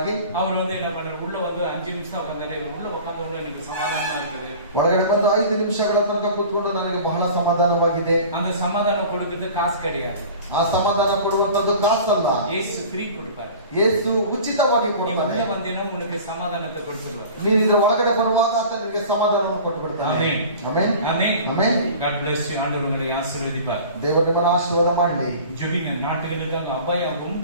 அவர் வந்து என்ன பண்ணாரு, உள்ள வந்து 5 ನಿಮಿಷம் உட்கார்ந்தாரு. உள்ள உட்கார்ந்தவங்க எனக்கு சமாதானமா இருக்குது. ಒಳಗಡೆ ಬಂದು 5 ನಿಮಿಷಗಳ ತನಕ ಕೂತ್ಕೊಂಡು ನನಗೆ ಬಹಳ ಸಮಾಧಾನವಾಗಿದೆ. அந்த சமாதானம் கொடுக்கிறது காசு கிடையாது. ಆ ಸಮಾಧಾನ ಕೊಡುವಂತದ್ದು ಕಾಸಲ್ಲ. இயேசு ಫ್ರೀ கொடுப்பாரு. ಯೇಸು ಉಚಿತವಾಗಿ ಕೊಡ್ತಾನೆ. உள்ள வந்தேனா உனக்கு சமாதானத்தை கொடுத்துருவார். ನೀನು ಇದರ ಒಳಗಡೆ ಬರುವಾಗ ಆತ ನಿನಗೆ ಸಮಾಧಾನವನ್ನು ಕೊಟ್ಟು ಬಿಡ್ತಾನೆ. Amen. Amen. Amen. Amen. God bless you. ஆண்டவர் உங்களை ஆசீர்வதிப்பார். ದೇವರು ನಿಮ್ಮನ್ನು ಆಶೀರ್ವಾದ ಮಾಡಲಿ. ஜெபிங்க. நாட்டுக்கு இருக்காங்க அபாயம்,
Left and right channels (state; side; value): inverted; both; correlation -0.41